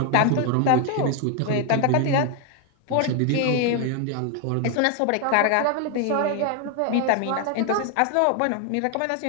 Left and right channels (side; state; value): both; different; correlation 0.01